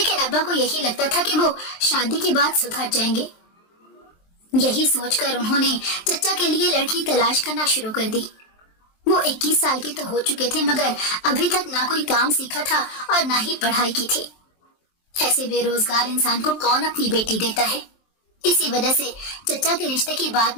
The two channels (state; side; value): late; right; 23 ms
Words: ابا کو یہی لگتا تھا کہ وہ شادی کے بعد سدھر جائیں گے۔ یہی سوچ کر انہوں نے چچا کے لیے لڑکی تلاش کرنا شروع کر دی۔ وہ 21 سال کے تو ہو چکے تھے مگر ابھی تک نہ کوئی کام سیکھا تھا اور نہ ہی پڑھائی کی تھی۔ ایسے بے روزگار انسان کو کون اپنی بیٹی دیتا ہے؟ اسی وجہ سے چچا کے رشتے کی بات